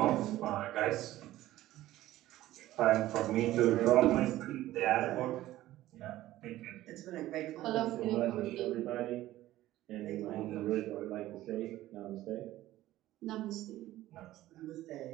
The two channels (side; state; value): left; quieter; 15.2 dB